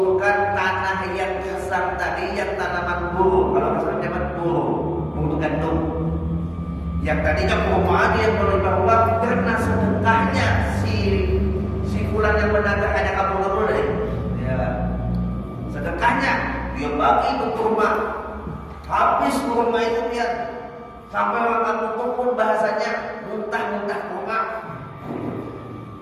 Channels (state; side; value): identical; both; correlation 1.00